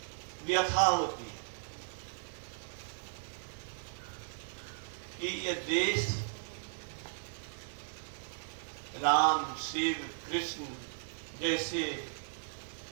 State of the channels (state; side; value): silent; left; digital silence